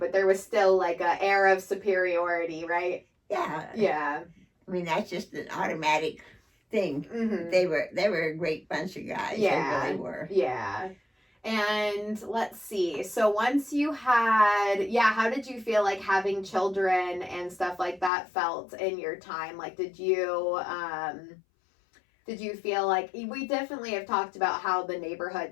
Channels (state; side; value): drops out; right; at 18.1 s